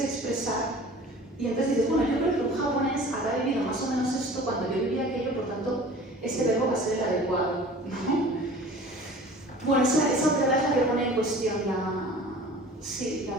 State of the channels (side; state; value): both; normal; correlation 0.44